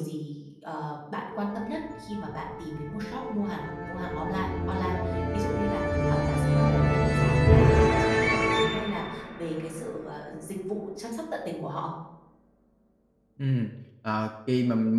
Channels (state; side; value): identical; both; correlation 1.00